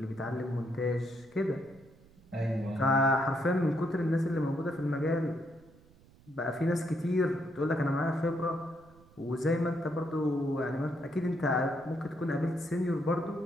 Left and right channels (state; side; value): noise; right; rumble, 26 dB below the sound